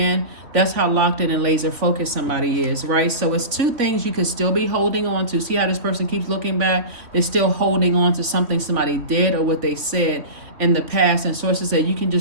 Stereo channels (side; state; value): left; late; 3.1 ms